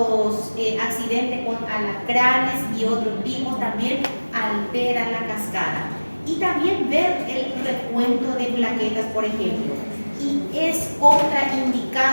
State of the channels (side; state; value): both; inverted; correlation -1.00